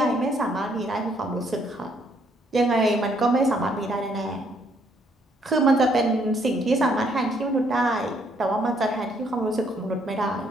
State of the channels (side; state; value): both; normal; correlation 0.69